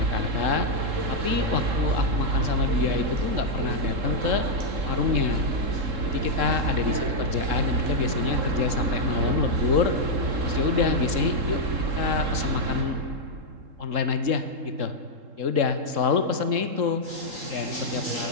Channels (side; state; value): left; late; 3.7 ms